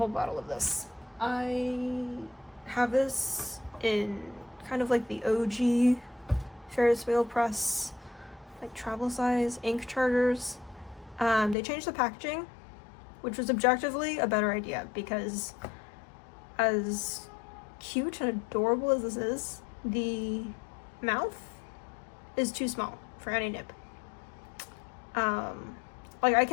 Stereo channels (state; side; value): drops out; right; at 11.6 s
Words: bottle of this. I have this in kind of like the OG Ferris wheel press, like travel size ink chargers. They changed the packaging, which was objectively a better idea, because as cute and adorable as this is, the mouth is too small for any nib. Like, I